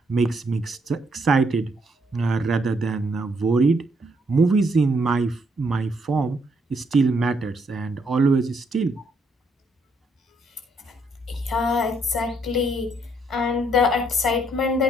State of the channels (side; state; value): both; normal; correlation 0.72